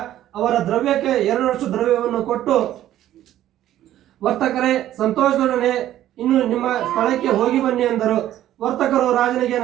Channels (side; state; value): left; quieter; 12.8 dB